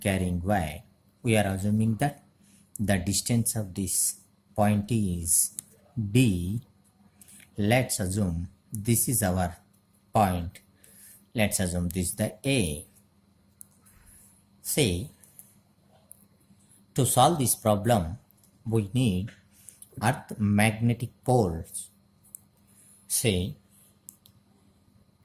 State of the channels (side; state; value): both; identical; correlation 1.00